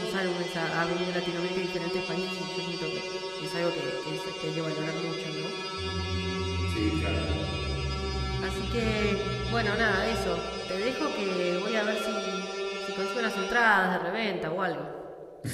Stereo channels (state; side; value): identical; both; correlation 1.00